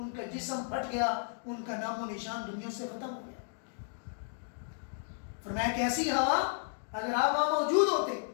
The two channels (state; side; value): silent; right; digital silence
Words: کا جسم پھٹ گیا، ان کا نام و نشان دنیا سے ختم ہو گیا۔ فرمایا کہ ایسی ہوا اگر آپ وہاں موجود ہوتے